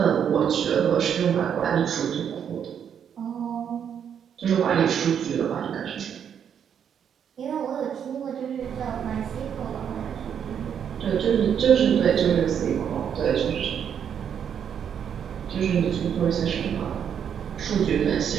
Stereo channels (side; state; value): left; quieter; 8.3 dB